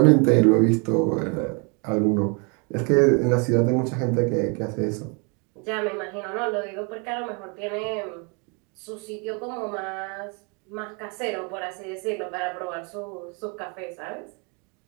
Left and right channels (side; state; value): left; quieter; 34.0 dB